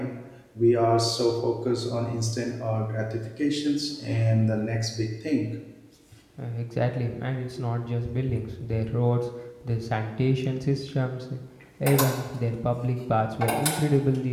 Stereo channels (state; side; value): identical; both; correlation 1.00